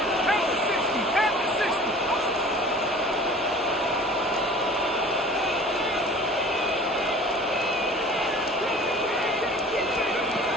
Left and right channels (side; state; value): both; normal; correlation 0.45